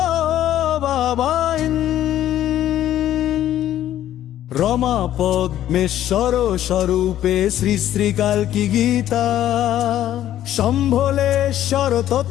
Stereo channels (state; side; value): quieter; right; 12.2 dB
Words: বাবাই। রমা পদ্মেশ্বর স্বরূপে শ্রী শ্রী কালকি গীতা। শম্ভলেশ্বর